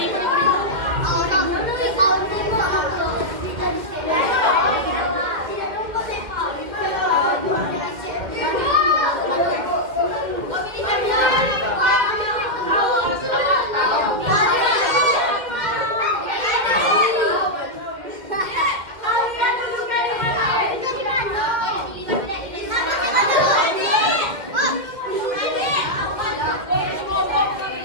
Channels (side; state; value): left; late; 2.1 ms